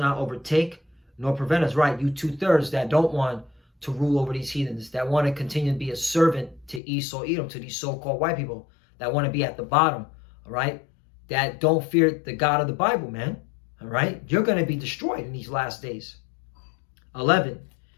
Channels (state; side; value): drops out; right; at 6.8 s